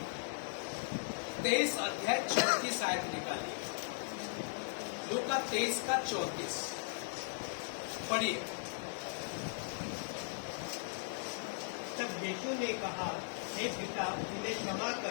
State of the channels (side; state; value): right; silent; digital silence